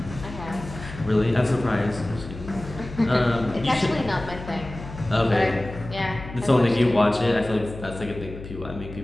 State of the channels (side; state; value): left; noise; hum, 12 dB below the sound